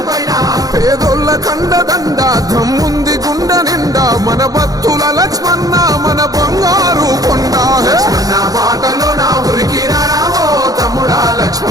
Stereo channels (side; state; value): left; late; 0.18 ms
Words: పైన పేదోళ్ళ కండదండ దమ్ముంది గుండె నిండా మన భక్తుల లక్ష్మణ మన బంగారు కొండ లక్ష్మణ బాటలోన ఉరికిరావో తమ్ముడా